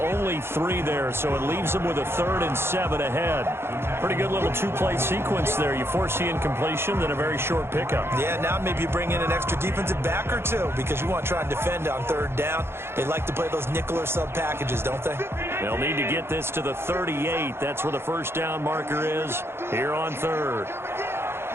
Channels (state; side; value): late; left; 0.12 ms